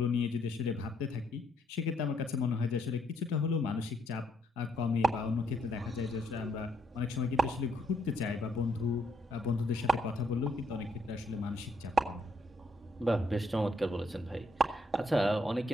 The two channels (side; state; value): both; normal; correlation 0.72